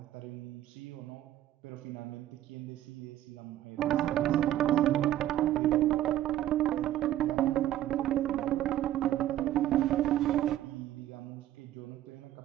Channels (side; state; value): left; quieter; 13.0 dB